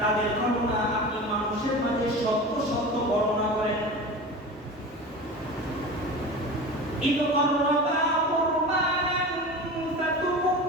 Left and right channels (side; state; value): both; normal; correlation 0.32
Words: ঘটনা আপনি মানুষের মাঝে সত্য সত্য বর্ণনা করেন إذ قربا قربانا